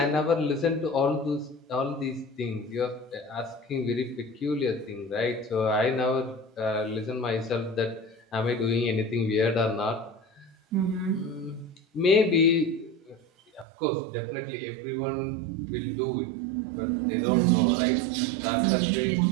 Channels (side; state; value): left; drops out; at 13.7 s